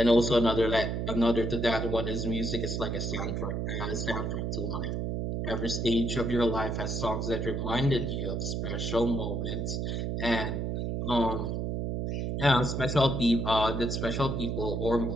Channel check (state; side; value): noise; right; hum, 1 dB below the sound